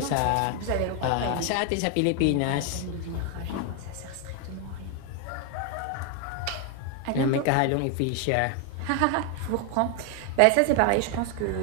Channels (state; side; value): different; both; correlation 0.01